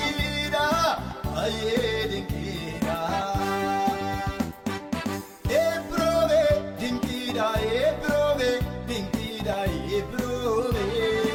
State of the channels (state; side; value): identical; both; correlation 1.00